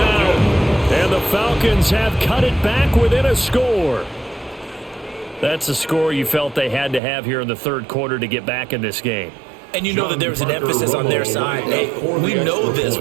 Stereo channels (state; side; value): drops out; left; at 7.0 s